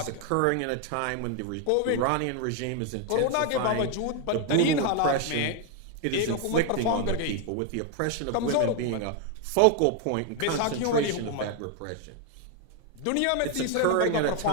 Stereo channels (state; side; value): different; both; correlation 0.01